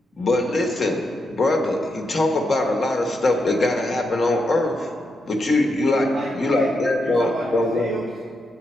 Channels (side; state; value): both; normal; correlation 0.83